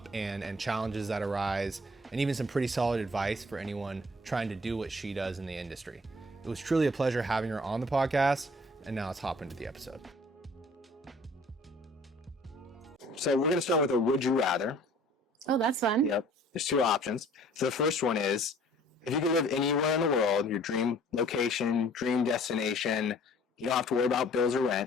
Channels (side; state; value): both; normal; correlation 0.53